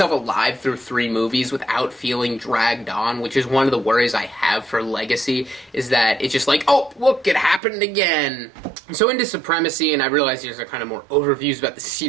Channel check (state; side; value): drops out; left; at 7.6 s